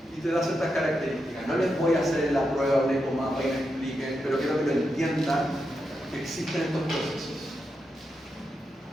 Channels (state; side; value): normal; both; correlation 0.86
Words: y te da ciertas características. No les voy a hacer la prueba un ecomapa y me expliquen, pero quiero que lo entiendan que existen estos procesos.